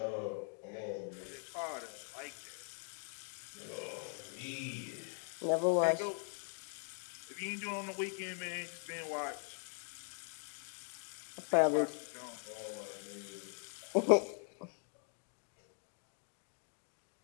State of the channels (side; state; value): right; silent; 50 dB below the other